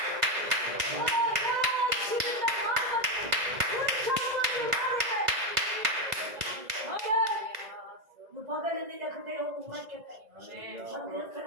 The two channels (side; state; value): left; late; 2.0 ms